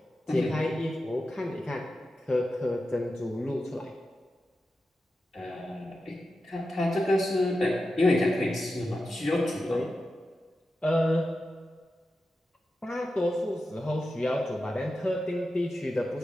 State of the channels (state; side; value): normal; both; correlation 0.91